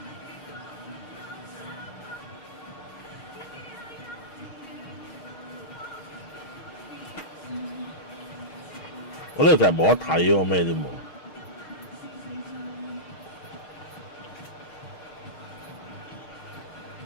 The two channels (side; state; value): right; late; 6.3 ms